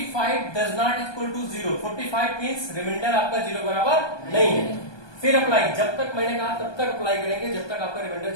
does not equal to 0, 45 means remainder आपका 0 बराबर नहीं है, फिर अप्लाई, जब तक मैंने कहा तब तक अप्लाई करेंगे जब तक आपका रिमाइंडर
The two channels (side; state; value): right; late; 1.2 ms